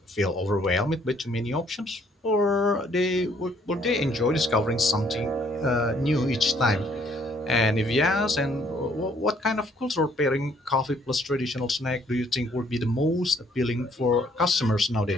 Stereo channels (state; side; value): normal; both; correlation 0.64